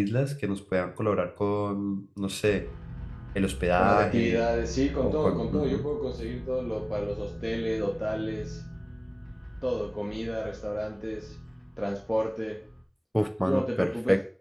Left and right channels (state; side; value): identical; both; correlation 1.00